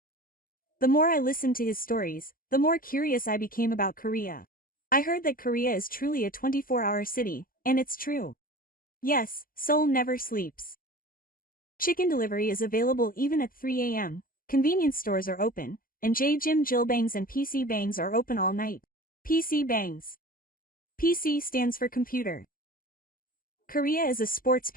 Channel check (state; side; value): late; right; 0.41 ms